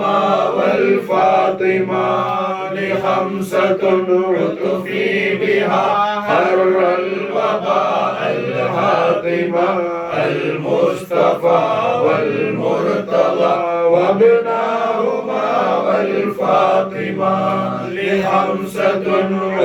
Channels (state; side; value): identical; both; correlation 1.00